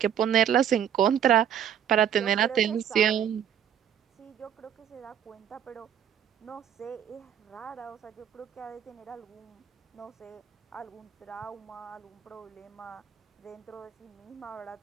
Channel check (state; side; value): quieter; left; 9.3 dB